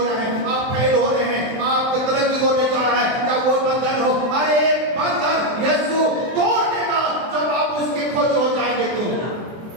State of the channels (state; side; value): late; left; 23 ms